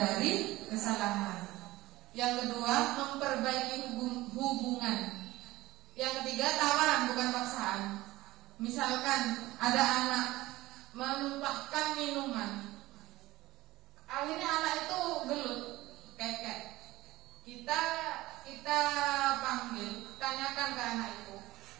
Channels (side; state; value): left; quieter; 18.0 dB